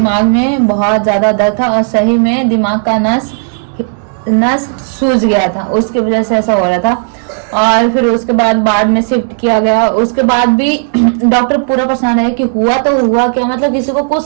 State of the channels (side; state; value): left; silent; digital silence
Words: में बहुत ज्यादा दर्द था और सही में दिमाग का नस सूज गया था, उसकी वजह से ऐसा हो रहा था। और फिर उसके बाद में शिफ्ट किया गया। उसके बाद भी डॉक्टर पूरा परेशान है कि हुआ तो हुआ क्या, मतलब किसी को कुछ